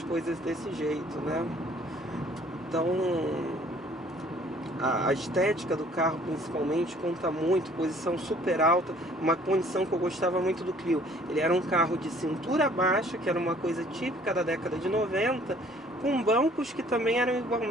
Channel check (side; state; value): both; normal; correlation 0.57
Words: coisas desse jeito, né? Então a estética do carro principalmente conta muito, posição super alta, uma condição que eu gostava muito do Clio. Ele era um carro de cintura baixa, que era uma coisa típica da década de 90, com bancos que também eram